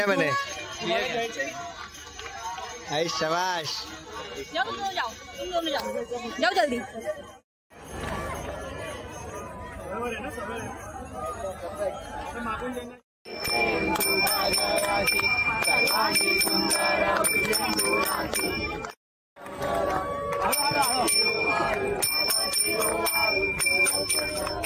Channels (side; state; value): both; identical; correlation 1.00